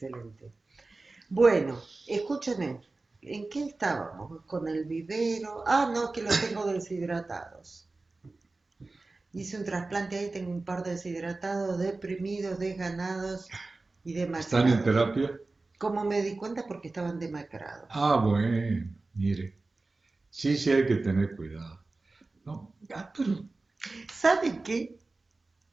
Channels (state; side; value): quieter; left; 3.4 dB